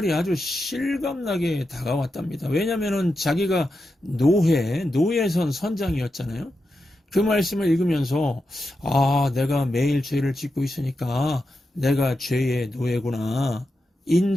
아주 실감나게 다가왔답니다. 왜냐하면 자기가 노예선 선장이었잖아요. 그 말씀을 읽으면서 내가 매일 죄를 짓고 있으니까 내가 죄의 노예구나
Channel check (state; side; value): normal; both; correlation 0.88